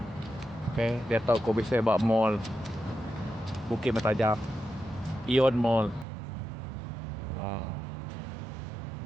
Okay, dia tahu kau bisa bawa mall Bukit Mertajam, Ion Mall.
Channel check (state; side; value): drops out; left; at 6.1 s